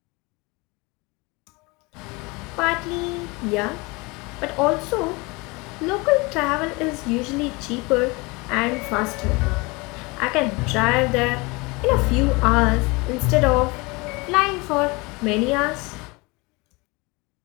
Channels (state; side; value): quieter; right; 25.8 dB